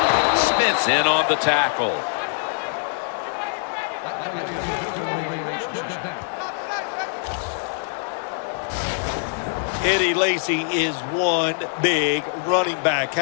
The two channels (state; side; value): silent; right; digital silence